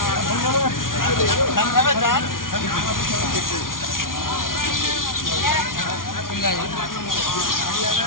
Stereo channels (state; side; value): late; right; 0.90 ms